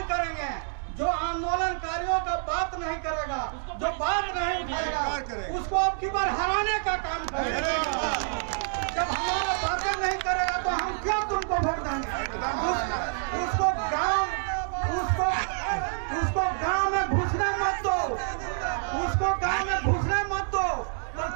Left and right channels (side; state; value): left; silent; digital silence